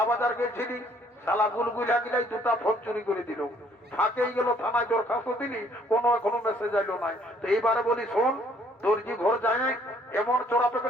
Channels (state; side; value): normal; both; correlation 0.63